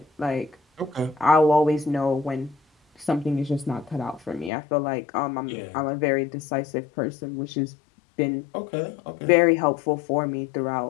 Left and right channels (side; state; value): right; drops out; at 4.5 s